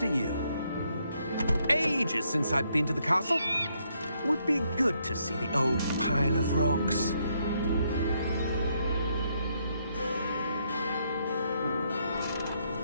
you. Ages since I've been to the castle. Would be good to see the old pile of rocks.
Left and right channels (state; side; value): inverted; both; correlation -0.74